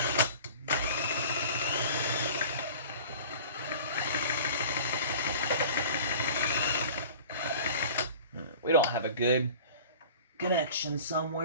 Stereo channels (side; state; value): both; inverted; correlation -0.42